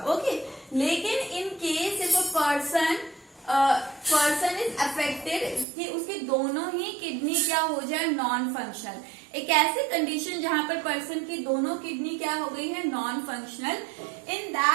ओके, लेकिन in case if a person is affected कि उसकी दोनों ही किडनी क्या हो जाए, नॉन फंक्शनल, एक ऐसी कंडीशन जहां पर पर्सन की दोनों किडनी क्या हो गई है, non functional, in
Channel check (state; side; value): drops out; left; at 5.7 s